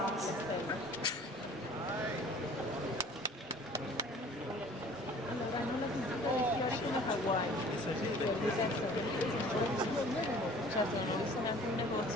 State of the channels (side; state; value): both; normal; correlation 0.49